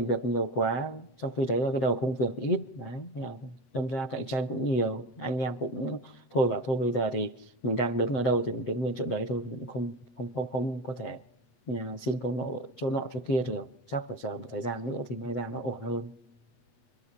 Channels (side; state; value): right; late; 8.2 ms